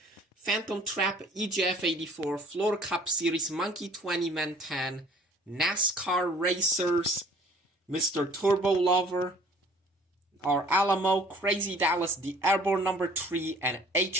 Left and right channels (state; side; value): normal; both; correlation 0.54